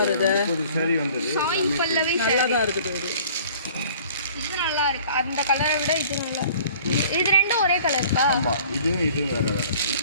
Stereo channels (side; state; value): both; inverted; correlation -0.50